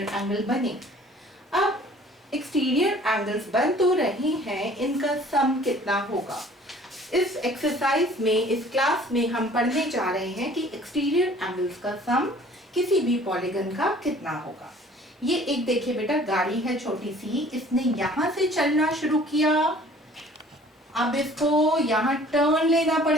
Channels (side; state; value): both; normal; correlation 0.52